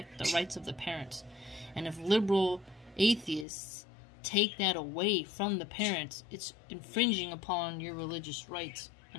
the rights of the parents. And if liberal atheists take that away from the parents, it's infringing upon your religious rights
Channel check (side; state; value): right; drops out; at 3.5 s